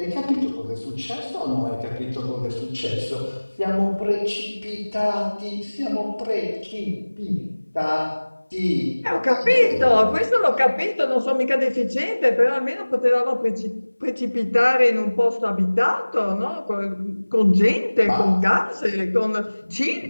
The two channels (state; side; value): inverted; both; correlation -1.00